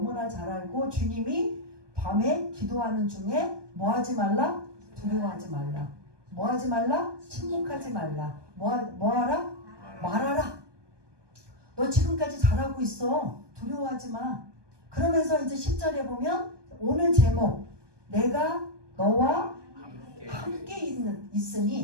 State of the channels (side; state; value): left; late; 1.2 ms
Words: 잘 알고 주님이 밤에 기도하는 중에 뭐 하지 말라? 두려워하지 말라. 뭐 하지 말라? 침묵하지 말라. 뭐 하라? 말하라. 너 지금까지 잘하고 있어. 두려워하지 마. 그러면서 이제 10절에 보면 오늘 제목, 내가 너와 함께